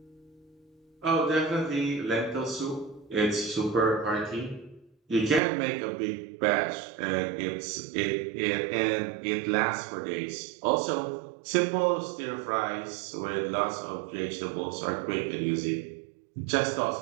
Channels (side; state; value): left; drops out; at 5.4 s